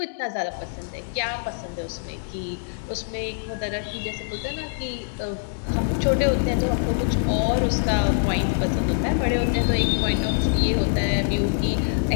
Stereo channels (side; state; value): right; silent; digital silence